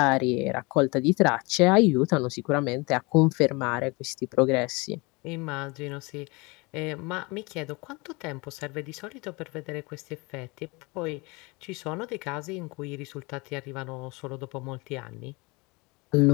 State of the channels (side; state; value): right; quieter; 26.4 dB